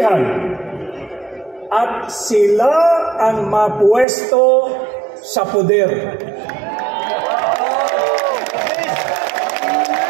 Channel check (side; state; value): left; drops out; at 4.0 s